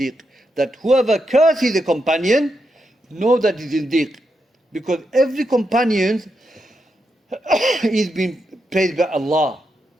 That whoever curses a companion, know that he's zindiq. Because every companion is being praised by Allah.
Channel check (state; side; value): normal; both; correlation 0.84